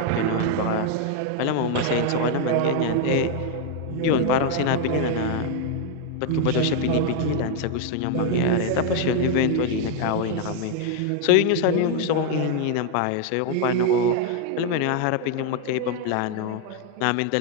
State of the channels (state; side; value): different; both; correlation 0.00